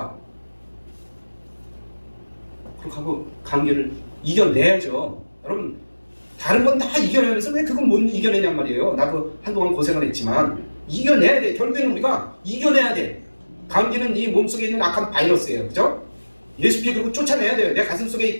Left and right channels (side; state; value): both; inverted; correlation -1.00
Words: 그렇게 하고 감기를 이겨내야죠. 여러분, 다른 건 다 이겨내면서 왜 그건 못 이겨내냔 말이에요. 나도 한동안 고생을 했지만 이겨내야 돼. 결국에는 우리가 이겨내야 돼. 감기는 이 몸속에 있는 악한 바이러스예요. 그죠? 예수피 그리고 쫓아내야 돼요. 내 가슴 속에